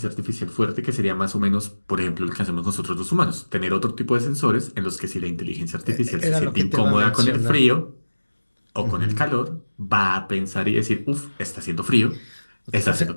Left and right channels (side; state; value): both; inverted; correlation -1.00